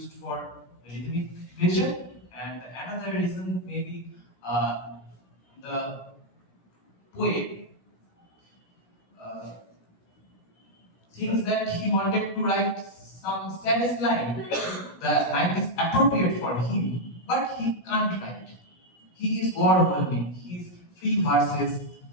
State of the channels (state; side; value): late; right; 17 ms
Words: for rhythmic pleasure, and another reason maybe the poet uh, thinks that he wanted to write some saddest line. The line is appropriate for him, but he can't write. He is overwhelming. His free verses